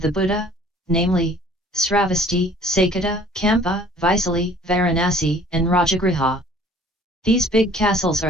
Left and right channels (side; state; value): both; normal; correlation 0.53